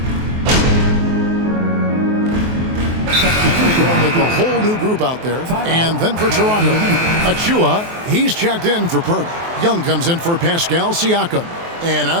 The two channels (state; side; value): late; left; 23 ms